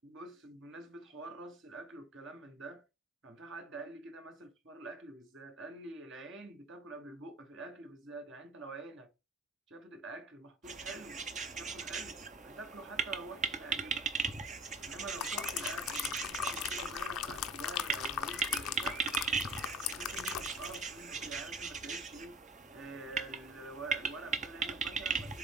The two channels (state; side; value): normal; both; correlation 0.45